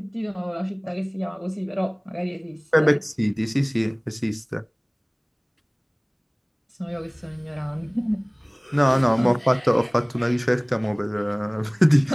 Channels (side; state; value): both; identical; correlation 1.00